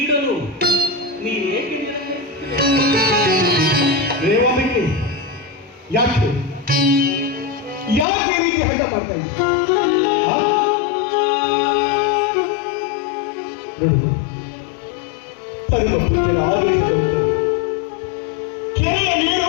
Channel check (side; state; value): right; drops out; at 8.1 s